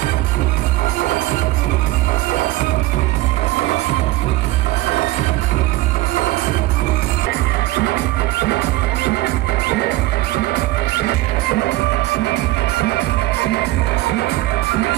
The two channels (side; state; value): left; quieter; 18.0 dB